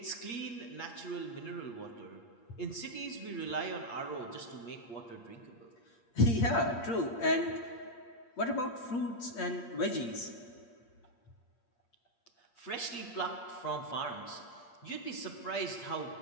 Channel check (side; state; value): right; late; 8.5 ms